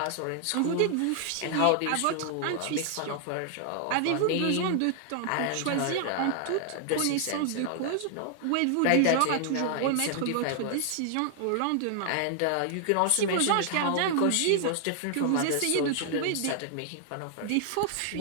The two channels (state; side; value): different; both; correlation 0.00